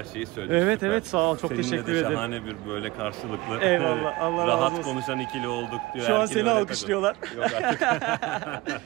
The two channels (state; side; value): quieter; left; 21.0 dB